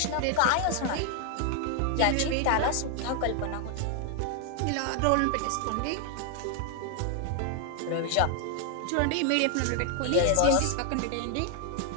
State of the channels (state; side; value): different; both; correlation 0.00